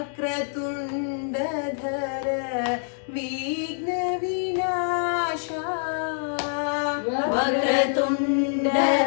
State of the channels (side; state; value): right; silent; digital silence